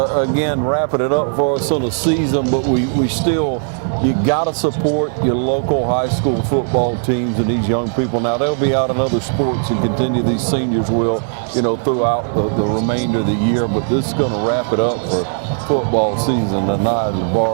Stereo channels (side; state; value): left; silent; 65 dB below the other